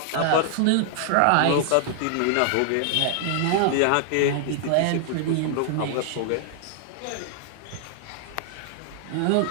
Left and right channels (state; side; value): different; both; correlation -0.01